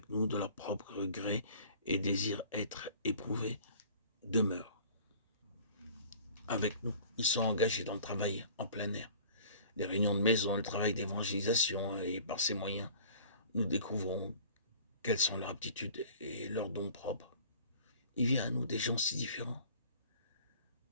nous de leur propre gré et désirent être éprouvés, demeurent avec nous. Ils sont engagés dans le travail en plein air, les réunions de maison, le travail d'évangélisation, et par ces moyens, nous découvrons quelles sont leurs aptitudes et leurs dons propres. Il vient à nous des gens si différents.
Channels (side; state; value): both; inverted; correlation -0.48